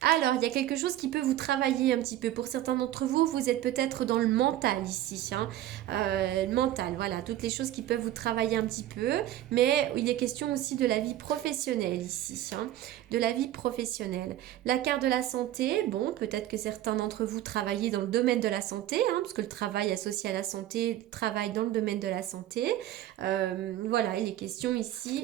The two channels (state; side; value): quieter; left; 13.3 dB